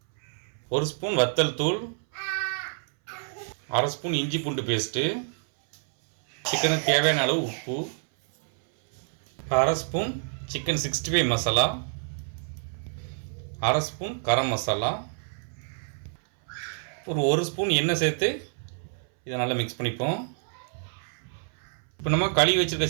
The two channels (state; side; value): silent; left; 60 dB below the other